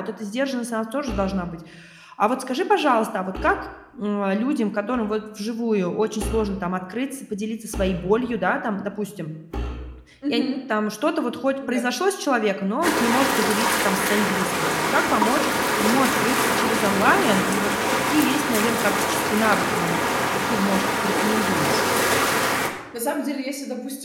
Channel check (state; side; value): identical; both; correlation 1.00